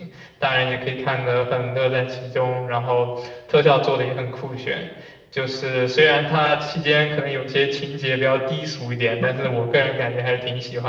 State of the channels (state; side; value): identical; both; correlation 1.00